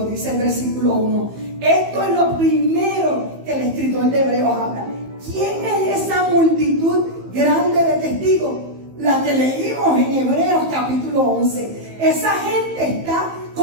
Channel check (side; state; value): left; late; 15 ms